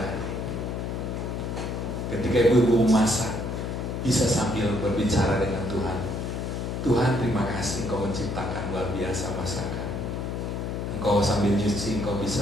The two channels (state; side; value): noise; left; hum, 3 dB below the sound